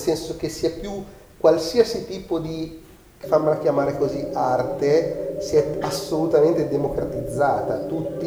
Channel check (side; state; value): both; identical; correlation 1.00